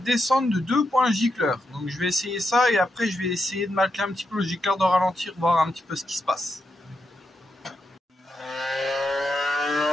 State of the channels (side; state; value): both; normal; correlation 0.84